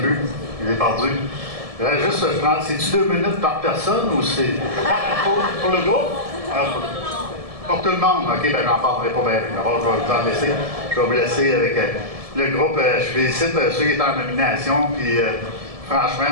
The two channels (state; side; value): late; left; 1.7 ms